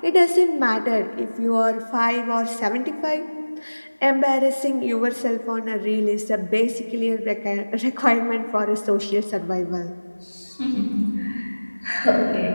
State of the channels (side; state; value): both; inverted; correlation -1.00